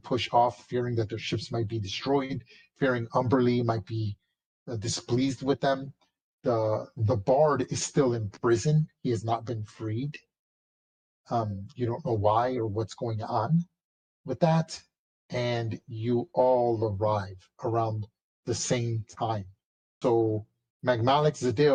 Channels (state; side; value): identical; both; correlation 1.00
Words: push off, fearing that their ships might be destroyed, fearing Umberlee might be displeased with them. The Bard is still in prison. He has not been freed. You don't know why or what's going on with that, and you all arrive around the same time. So Magmalik